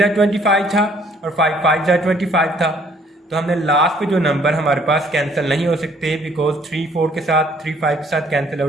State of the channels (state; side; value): normal; both; correlation 0.62